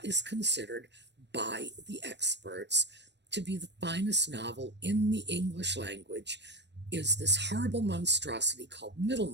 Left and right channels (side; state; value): left; late; 0.51 ms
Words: is considered by the experts to be the finest novel in the English language is this horrible monstrosity called